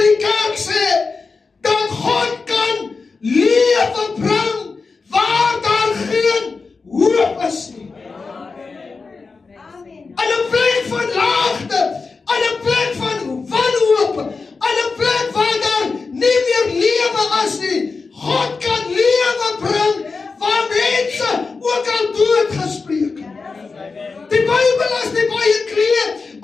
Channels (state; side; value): quieter; right; 4.4 dB